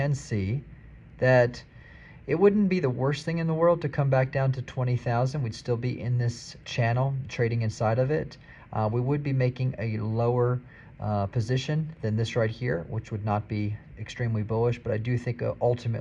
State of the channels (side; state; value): both; identical; correlation 1.00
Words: see that it wouldn't be the worst thing in the world to come back down to 20,000. We'd still be in this channel trading inside of it. We would be making a lower position than this right here, which would not be extremely bullish, but I do think